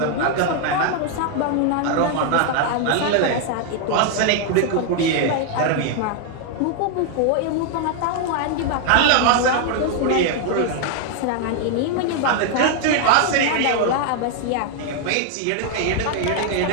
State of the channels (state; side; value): different; both; correlation 0.00